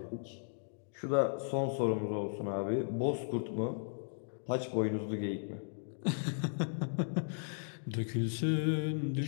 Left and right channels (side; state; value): right; silent; digital silence